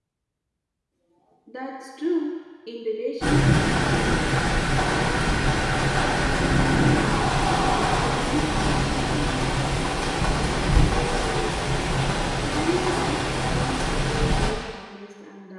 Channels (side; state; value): both; identical; correlation 1.00